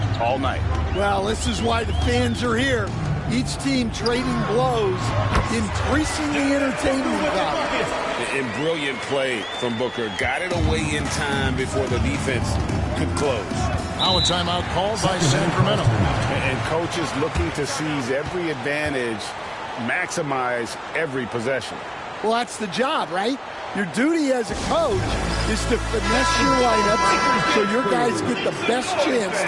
all night. Well, this is why the fans are here. Each team trading blows, increasing the entertainment value. And brilliant play from Booker. Got it away in time before the defense could close. Now a timeout called by Sacramento. And coaches looking to seize every advantage, maximize every possession. Well, that's the job, right? Your duty as a coach is to finesse your lineups so your guys get the best chance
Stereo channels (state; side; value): identical; both; correlation 1.00